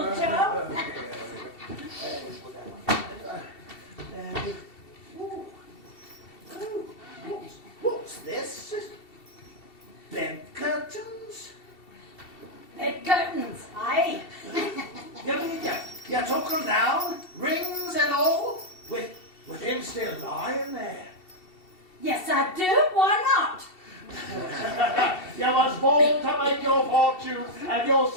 Joe. What's this? Bed curtains? Bed curtains, aye. You took them down, rings and all, with him still lying there. Yes, I do. Why not? You was born to make your fortune, and you'll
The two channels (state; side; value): late; right; 2.7 ms